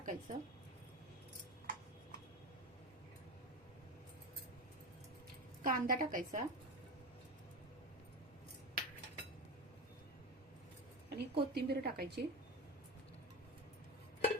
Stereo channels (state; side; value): normal; both; correlation 0.22